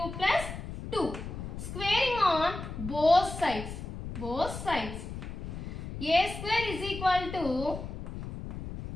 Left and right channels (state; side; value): noise; left; rumble, 8 dB below the sound